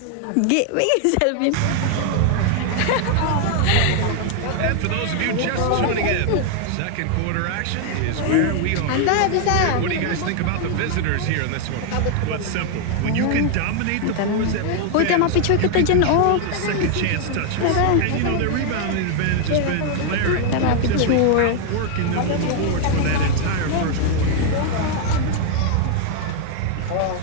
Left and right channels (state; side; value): different; both; correlation 0.00